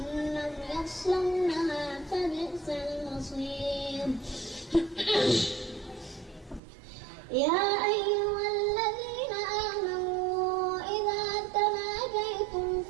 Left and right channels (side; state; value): left; drops out; at 6.6 s